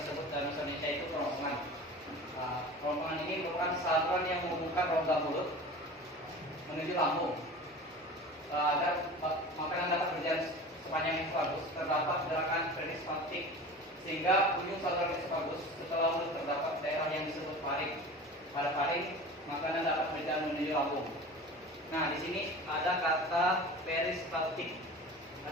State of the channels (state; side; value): normal; both; correlation 0.36